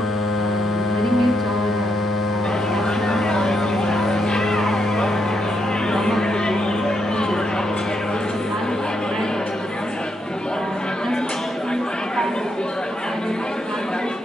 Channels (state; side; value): normal; both; correlation 0.79